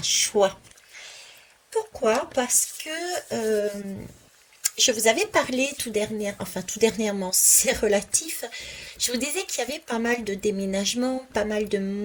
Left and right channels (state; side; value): identical; both; correlation 1.00